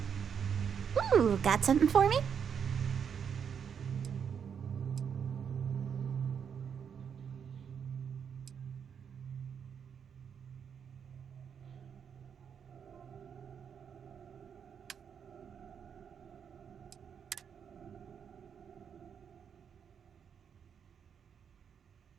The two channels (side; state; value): left; quieter; 7.4 dB